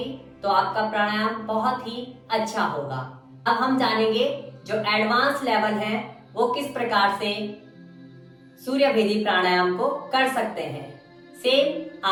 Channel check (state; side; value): identical; both; correlation 1.00